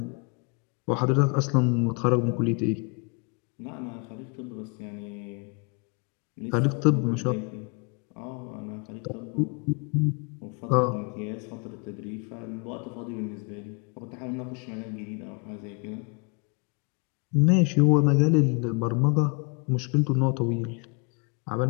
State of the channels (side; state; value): right; quieter; 34.0 dB